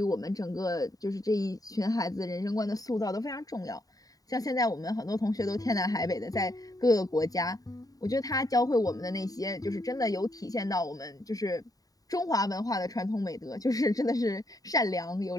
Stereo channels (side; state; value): right; late; 0.18 ms